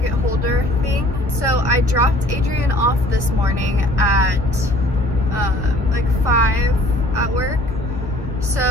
holder thing. So I dropped Adrian off this morning at like 5 at work.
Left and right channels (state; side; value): normal; both; correlation 0.54